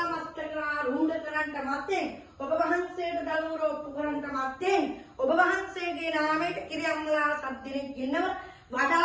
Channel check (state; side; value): identical; both; correlation 1.00